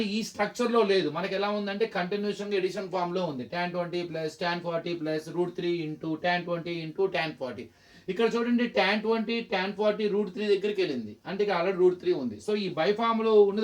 ఈ స్ట్రక్చర్లో లేదు. మనకి ఎలా ఉందంటే కంటిన్యూషన్గా ఎడిషన్ ఫామ్లో ఉంది. tan 20 plus tan 40 plus √3 into tan 20 into tan 40. ఇక్కడ చూడండి tan 20 tan 40 √3 దగ్గరికి వెళ్ళింది, అంటే ఇక్కడ ఆల్రెడీ √3 ఉంది. సో ఈ బై ఫామ్లో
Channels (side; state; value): both; identical; correlation 1.00